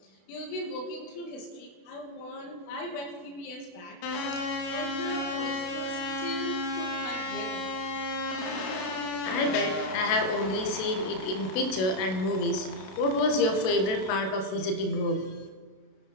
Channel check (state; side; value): late; right; 32 ms